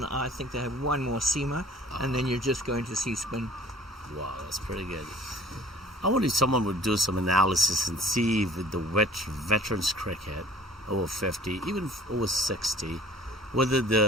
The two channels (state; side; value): normal; both; correlation 0.49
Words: I think they have one more seamer, and then you're just going to see spin. Wow, that's pretty good. I wonder if someone would do some analysis and see with the veterans cricket, over 50, even over 60, whether